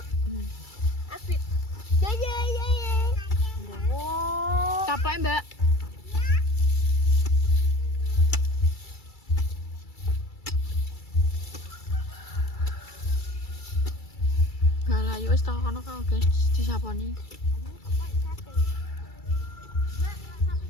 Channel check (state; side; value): late; right; 2.3 ms